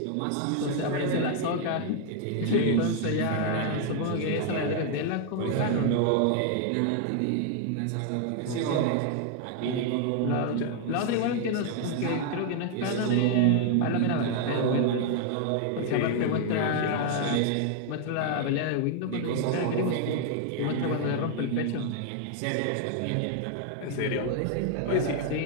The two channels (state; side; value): different; both; correlation 0.00